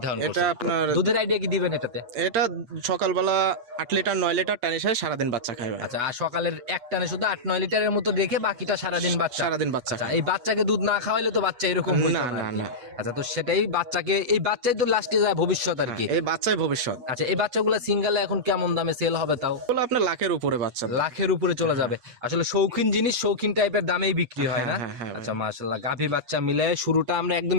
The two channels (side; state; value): left; late; 8.2 ms